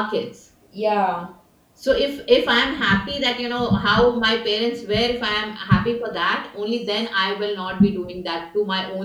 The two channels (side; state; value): both; identical; correlation 1.00